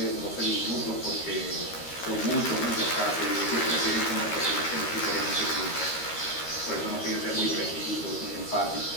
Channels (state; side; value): late; right; 13 ms